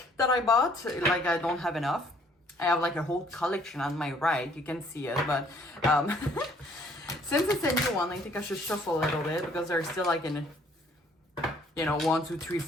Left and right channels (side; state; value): both; normal; correlation 0.61